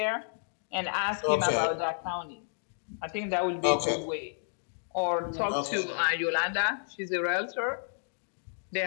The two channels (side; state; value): right; silent; digital silence